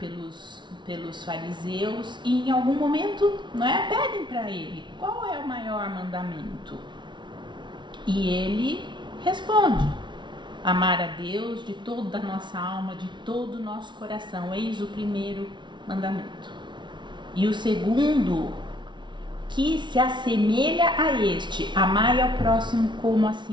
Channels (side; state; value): left; late; 0.23 ms